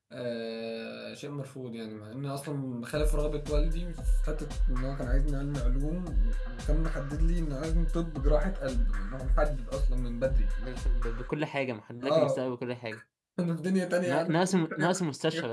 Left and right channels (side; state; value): both; identical; correlation 1.00